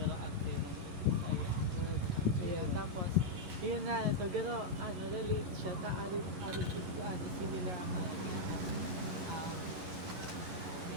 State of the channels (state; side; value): late; left; 11 ms